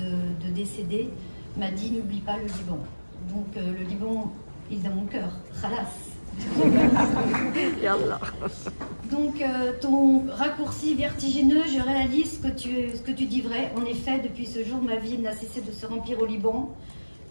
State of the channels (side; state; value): both; inverted; correlation -1.00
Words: décéder, m'a dit « N'oublie pas le Liban ». Donc le Liban, il est dans mon cœur. Khalas. Donc ton raccourci vertigineux, je réalise ce que tu dis vrai. En effet, depuis ce jour, ma vie n'a cessé de se remplir au Liban,